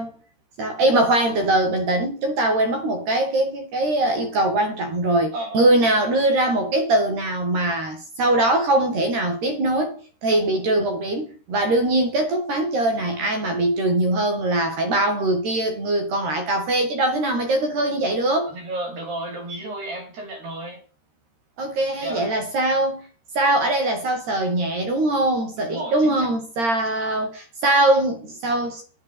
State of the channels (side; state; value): left; late; 13 ms